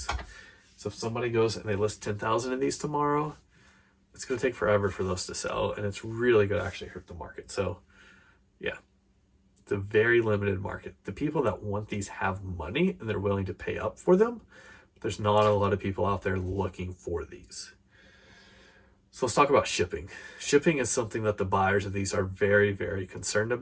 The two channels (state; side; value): identical; both; correlation 1.00